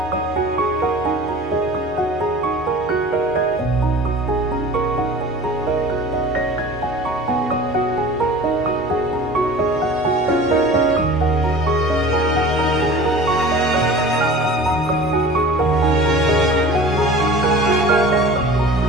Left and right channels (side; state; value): both; normal; correlation 0.41